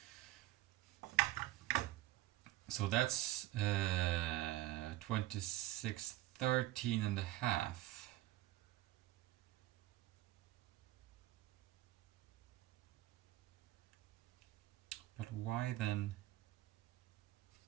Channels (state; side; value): quieter; left; 16.2 dB